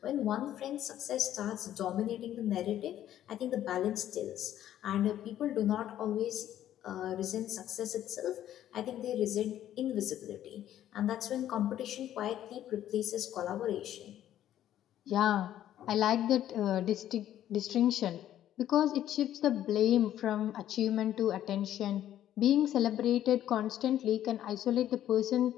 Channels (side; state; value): right; quieter; 11.8 dB